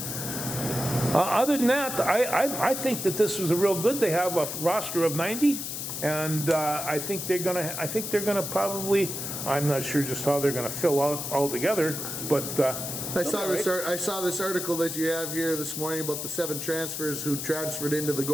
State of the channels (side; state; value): left; noise; hiss, 5 dB below the sound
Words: Other than that, I think that this was a real good. They have a roster of 90, and I think they're gonna probably. I'm not sure just how they're gonna fill out altogether, but. I saw this article that you have here this morning about the 7 transfers who transferred into the